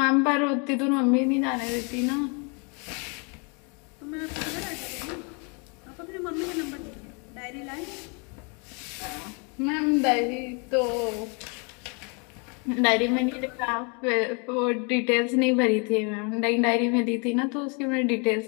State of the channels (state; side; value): quieter; right; 34.7 dB